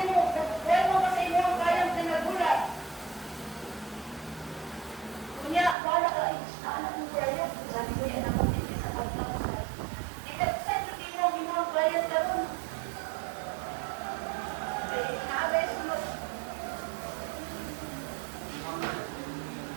mo, huwag mo kasi mo ang kayang pinagulat. Kunya, wala ka, anak mo kaya, sabi ko yan ako, hindi sa pagkakas. Ikapsay, hindi mo ang kayang karoon. Kaya, naabay sunod.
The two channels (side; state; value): left; drops out; at 5.8 s